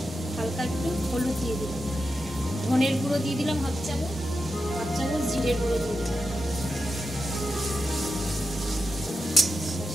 হালকা একটু হলুদ দিয়ে দিলাম, ধনের গুঁড়ো দিয়ে দিলাম হাফ চামচ জিরের গুঁড়ো দিয়ে দিলাম।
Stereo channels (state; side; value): normal; both; correlation 0.89